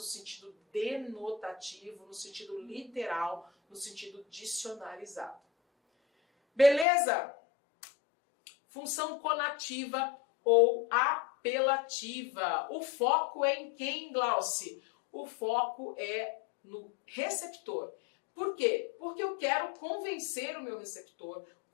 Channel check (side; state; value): right; drops out; at 6.9 s